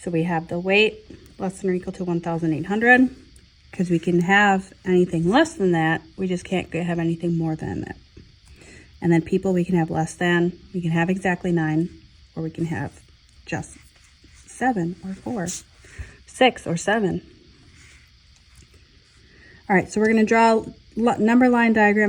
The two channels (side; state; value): both; identical; correlation 1.00